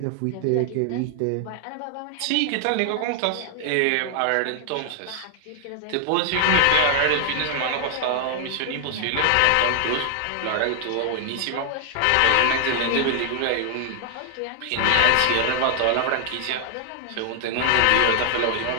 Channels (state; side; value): different; both; correlation 0.00